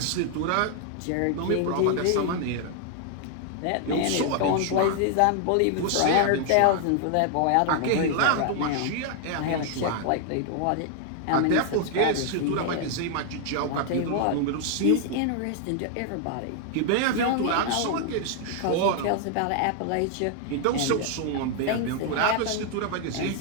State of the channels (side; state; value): both; different; correlation 0.00